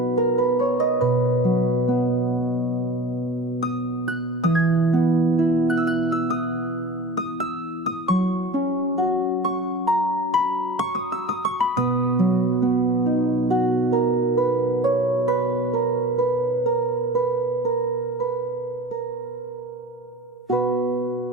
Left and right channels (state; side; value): normal; both; correlation 0.37